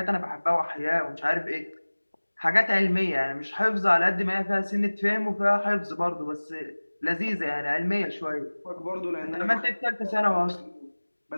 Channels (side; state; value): both; inverted; correlation -1.00